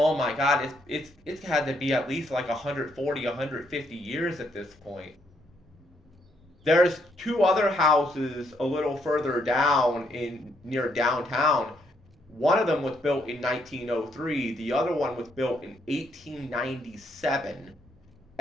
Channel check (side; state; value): both; normal; correlation 0.73